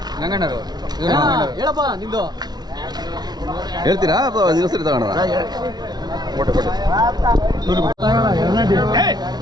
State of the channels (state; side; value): late; left; 0.19 ms